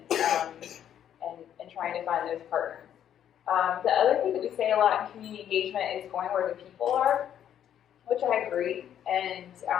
trying to find those partners. The other thing that we say a lot in community engagement is going where the people are, which I agree, and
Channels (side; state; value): right; quieter; 10.0 dB